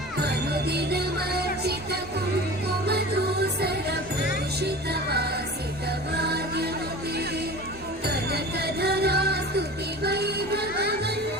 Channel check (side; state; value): both; normal; correlation 0.37